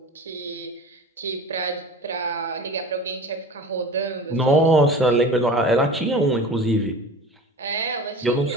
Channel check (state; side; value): normal; both; correlation 0.37